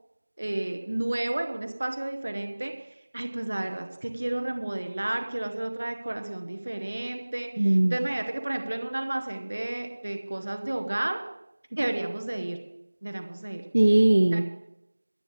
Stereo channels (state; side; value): inverted; both; correlation -1.00